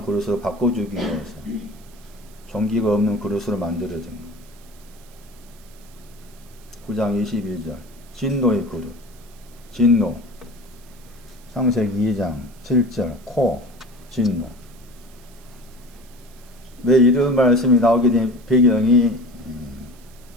그릇으로 바꿔주기 위해서 종기가 없는 그릇으로 만들어진 거예요. 9장 22절. 진노의 그릇. 진노. 창세기 2장 7절. 코. 진노. 왜 이런 말씀이 나오게 된 배경이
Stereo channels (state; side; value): noise; right; hiss, 26 dB below the sound